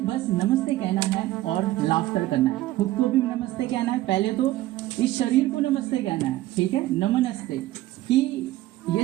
बस नमस्ते कहना है और लाफ्टर करना है। खुद को भी नमस्ते कहना है, पहले तो इस शरीर को नमस्ते कहना है, ठीक है। नमस्ते कि ये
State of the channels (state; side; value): quieter; left; 16.0 dB